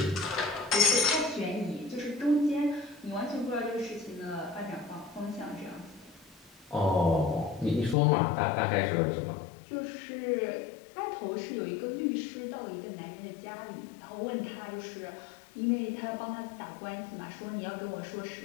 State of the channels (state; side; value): drops out; right; at 8.0 s